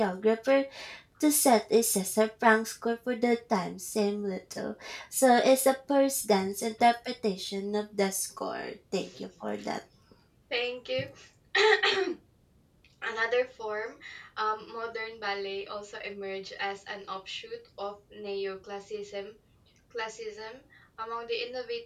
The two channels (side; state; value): both; identical; correlation 1.00